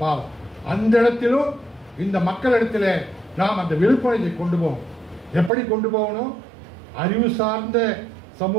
பாவம். அந்த இடத்திலும் இந்த மக்களிடத்தில் நாம் அந்த விழிப்புணர்வை கொண்டு போகணும். எப்படி கொண்டு போகணும்? அறிவு சார்ந்த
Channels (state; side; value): drops out; left; at 5.5 s